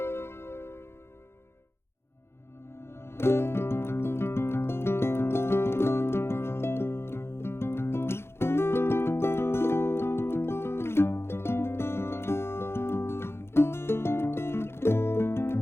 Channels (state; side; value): late; right; 0.12 ms